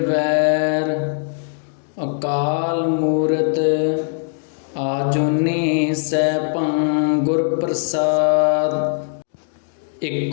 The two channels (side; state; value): right; silent; digital silence